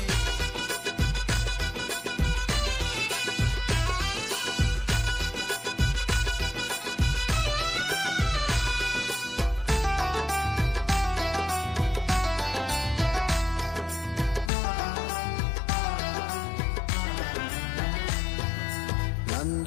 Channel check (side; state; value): right; drops out; at 14.5 s